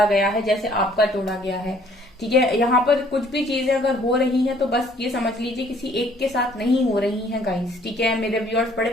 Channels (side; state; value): both; normal; correlation 0.59